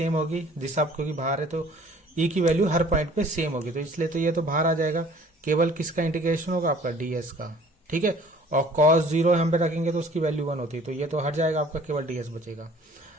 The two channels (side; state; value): both; normal; correlation 0.52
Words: होगी, दिशा क्योंकि बाहर है, तो ई की वैल्यू हर पॉइंट पे सेम होगी, तो इसलिए तो ये तो बाहर आ जाएगा। केवल किसका इंटीग्रेशन होगा, आपका डीएस का, ठीक है। और कॉस 0 हम पे रखेंगे तो उसकी वैल्यू 1 होती है, तो ये तो हट जाएगा, आपका केवल डीएस बचेगा।